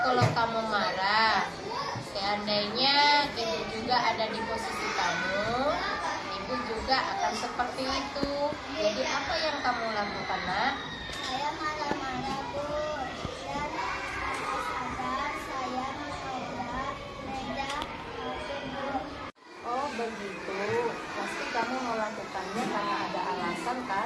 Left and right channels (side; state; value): both; identical; correlation 1.00